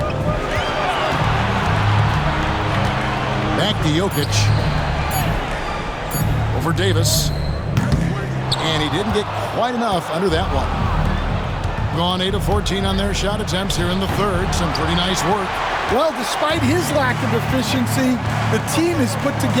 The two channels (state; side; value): identical; both; correlation 1.00